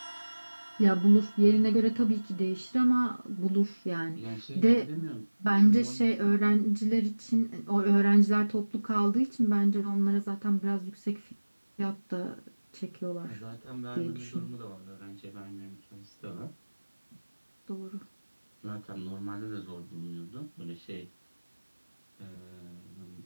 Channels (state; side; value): inverted; both; correlation -1.00